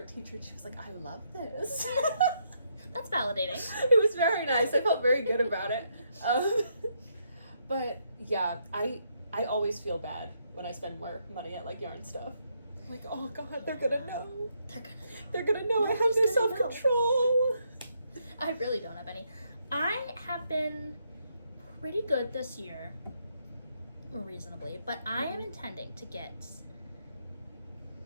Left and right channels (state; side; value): inverted; both; correlation -0.76